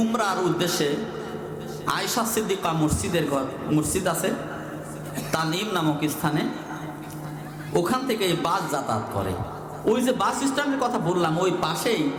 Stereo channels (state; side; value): identical; both; correlation 1.00